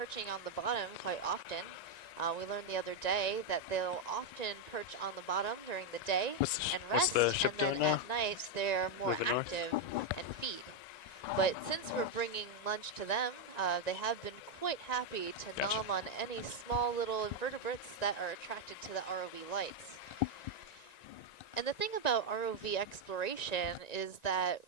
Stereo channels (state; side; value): late; right; 1.9 ms